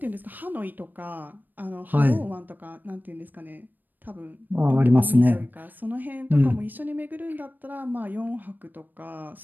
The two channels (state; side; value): late; left; 0.089 ms